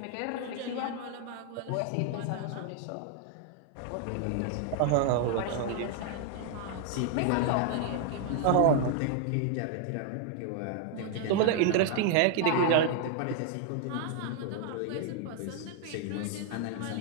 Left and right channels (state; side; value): different; both; correlation 0.00